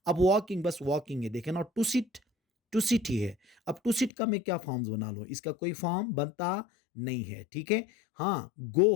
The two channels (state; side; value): drops out; right; at 4.1 s